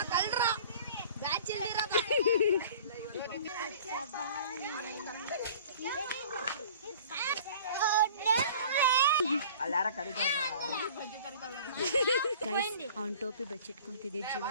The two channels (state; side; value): inverted; both; correlation -0.46